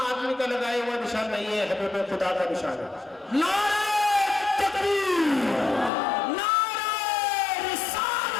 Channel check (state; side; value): drops out; right; at 5.9 s